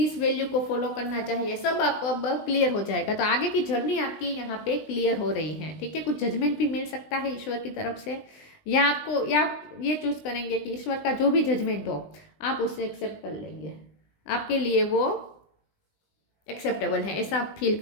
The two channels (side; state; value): right; late; 19 ms